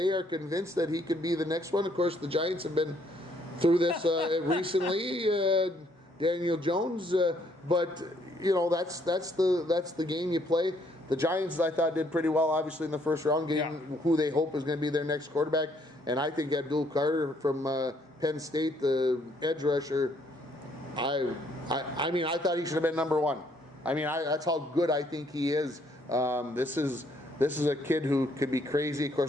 are convinced that he could be the next one. Of course, the Giants have been through this recently. Daniel Jones, but that's the game you play. The Giants, I thought, did pretty well, obviously, in the first round, getting who they hope is going to be their next quarterback. And I think Abdul Carter from Penn State, the edge rusher, I mean, I thought he should have been number one. I mean, that's how good I think he is. This is a kid who could be crazy. Of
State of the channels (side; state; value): both; normal; correlation 0.68